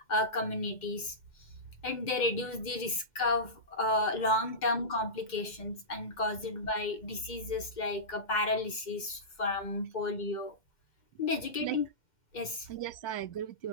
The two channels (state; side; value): late; right; 2.1 ms